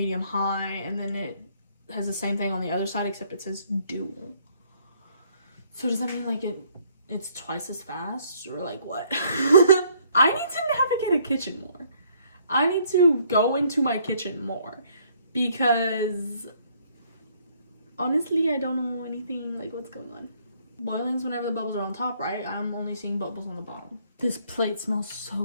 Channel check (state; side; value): inverted; both; correlation -0.65